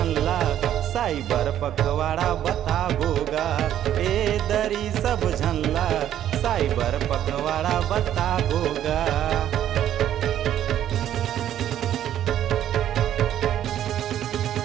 साइबर पखवाड़ा बताबोगा, ए दरी सब झनला साइबर पखवाड़ा बताबोगा।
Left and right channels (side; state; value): left; quieter; 11.2 dB